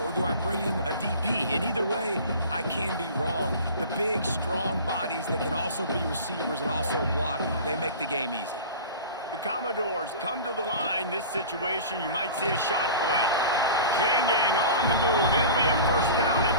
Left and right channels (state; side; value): inverted; both; correlation -0.37